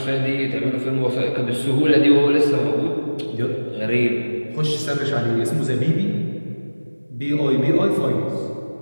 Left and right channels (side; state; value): both; inverted; correlation -1.00